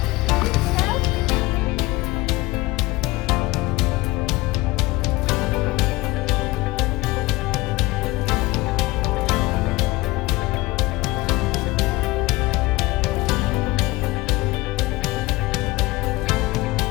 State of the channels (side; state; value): right; quieter; 20.5 dB